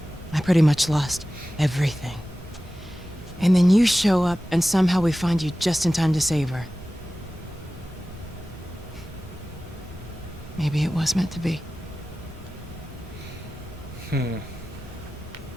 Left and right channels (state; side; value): normal; both; correlation 0.95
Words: I pretty much lost everything. And then you show up, and somehow we find you just in time to save her. Maybe it was meant to be.